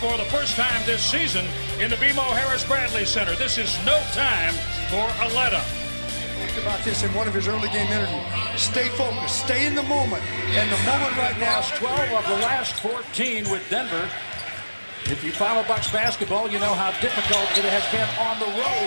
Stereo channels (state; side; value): inverted; both; correlation -1.00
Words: the first time this season in the BMO Harris Bradley Center. This is no time for a let-up. Think about this in one of his early game interviews. Stay focused, stay in the moment. And the moment right now. Lost 12 of the last 14 with Denver. If you follow Bucks basketball, you know how difficult it has been on the